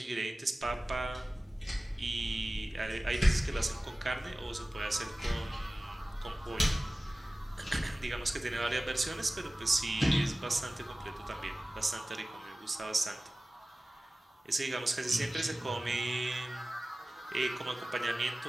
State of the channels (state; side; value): normal; both; correlation 0.97